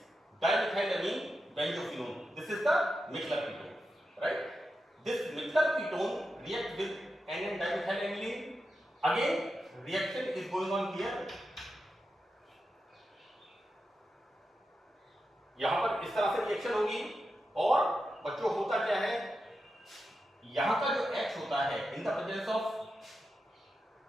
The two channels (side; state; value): both; normal; correlation 0.89